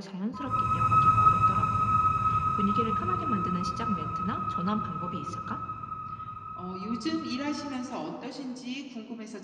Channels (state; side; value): identical; both; correlation 1.00